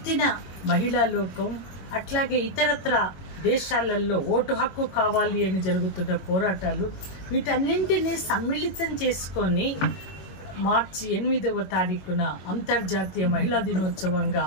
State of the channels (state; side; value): late; right; 21 ms